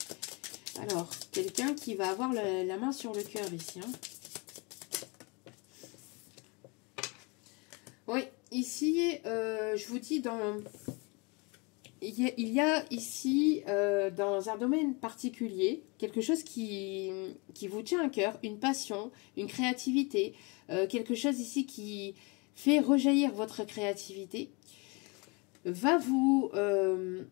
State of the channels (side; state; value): right; quieter; 29.6 dB